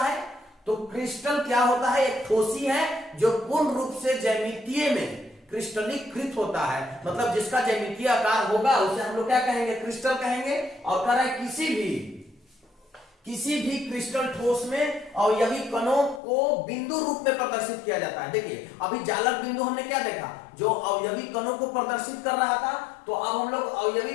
तो क्रिस्टल क्या होता है? एक ठोसी है जो पूर्ण रूप से ज्यामितीय में क्रिस्टलीकृत होता है, मतलब जिसका ज्यामितीय आकार होगा उसे हम लोग क्या कहेंगे? क्रिस्टल कहेंगे। और कह रहा है किसी भी क्रिस्टल ठोस में अवयवी कणों को बिंदु रूप में प्रदर्शित किया जाता है। देखिए, अभी जालक बिंदु हमने क्या देखा? जो अवयवी कणों को प्रदर्शित कर रहा था। तो अब हम लोग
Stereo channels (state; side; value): drops out; right; at 16.2 s